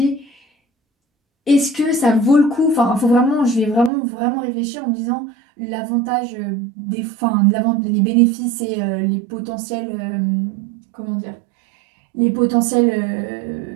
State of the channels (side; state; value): left; drops out; at 3.9 s